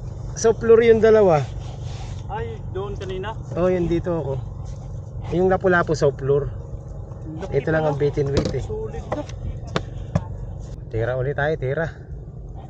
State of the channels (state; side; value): identical; both; correlation 1.00